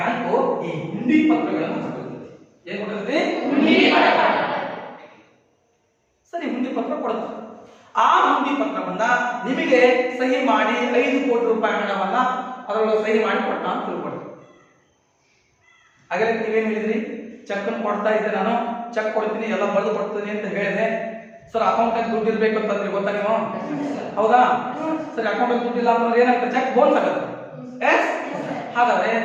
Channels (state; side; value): identical; both; correlation 1.00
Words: ಈ ಹುಂಡಿ ಪತ್ರಗಳನ್ನು ಕೊಟ್ಟಿರ್ತದೆ. ಏನ್ ಕೊಟ್ಟಿರ್ತದೆ? ಸರಿ, ಹುಂಡಿ ಪತ್ರ ಕೊಡುತ್ತೆ. ಆ ಹುಂಡಿ ಪತ್ರವನ್ನ ನಿಮಗೆ ಸಹಿ ಮಾಡಿ 5 ಕೋಟಿ ರೂಪಾಯಿ ಹಣವನ್ನ ಅದರೊಳಗೆ ಸಹಿ ಮಾಡಿ ಕೊಟ್ಟ ಅಂತ ತಿಳ್ಕೊಡ್ತೀವಿ. ಹಾಗಾದ್ರೆ ನೀವೇನ್ ಹೇಳಿದ್ರಿ? ಚೆಕ್ ಅನ್ನು ಕೊಡ್ತಾ ಇದ್ದೆ, ನಾನು ಚೆಕ್ ಕೊಡ್ತೀನಿ, ಎಲ್ಲ ಬರೆದು ಕೊಡ್ತೀನಿ ಅಂತ ಹೇಳಿದೆ. ಸರ್ ಅಕೌಂಟ್ ಅಲ್ಲಿ ದುಡ್ಡು ಇರ್ಬೇಕು ಅಂತಂದ್ರೆ ಗೊತ್ತಾ ನೀವು? ಹೌದಾ? ಸರಿ, ಅಕೌಂಟ್ ಅಲ್ಲಿ ದುಡ್ಡು ಇಲ್ಲ ಅಂತಂದ್ರೆ ಏನಾಗ್ತದೆ? ಚೆಕ್ ಬೌನ್ಸ್ ಆಗುತ್ತೆ. ಹಾಗಾದ್ರೆ